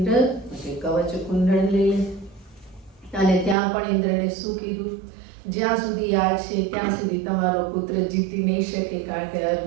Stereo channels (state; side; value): drops out; left; at 3.6 s